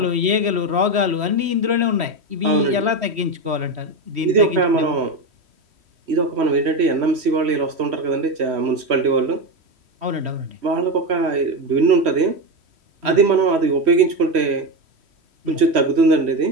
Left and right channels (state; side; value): late; left; 3.1 ms